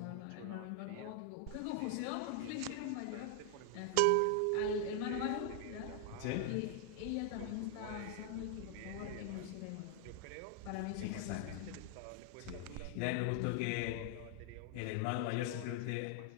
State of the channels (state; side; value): different; both; correlation 0.00